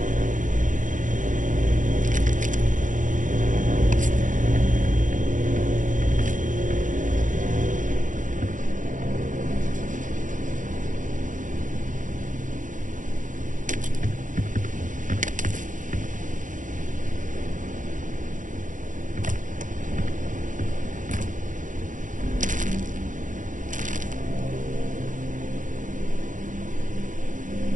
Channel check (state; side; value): late; left; 0.37 ms